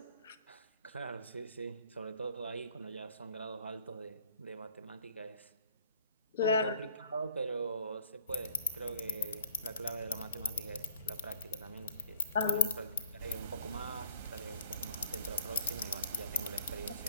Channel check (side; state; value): both; inverted; correlation -0.55